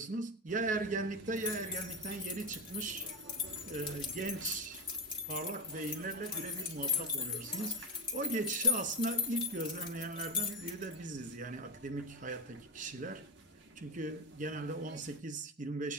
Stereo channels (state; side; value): normal; both; correlation 0.16